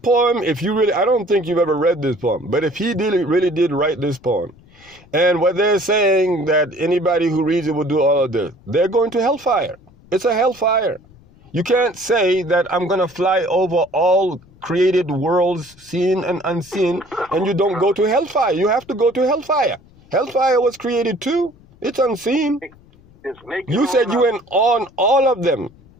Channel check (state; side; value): noise; left; rumble, 27 dB below the sound